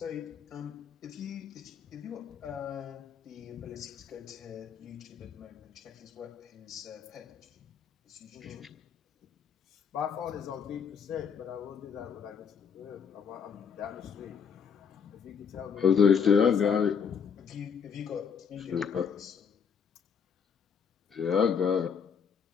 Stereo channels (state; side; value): quieter; right; 6.8 dB